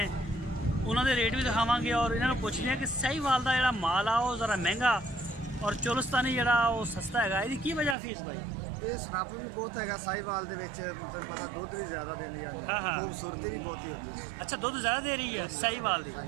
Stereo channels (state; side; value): drops out; left; at 8.0 s